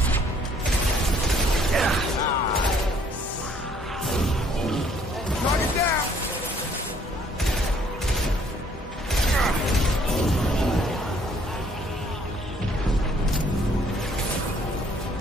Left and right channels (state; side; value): normal; both; correlation 0.62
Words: Knock it down.